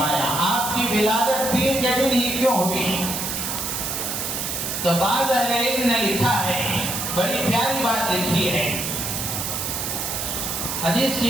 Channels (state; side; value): noise; right; hiss, 3 dB below the sound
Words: آپ کی ولادت پیر کے دن ہی کیوں ہوئی؟ تو بعض اہل علم نے لکھا ہے، بڑی پیاری بات لکھی ہے، حدیث